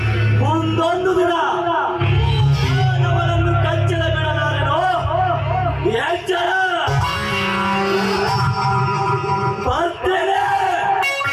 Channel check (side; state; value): both; identical; correlation 1.00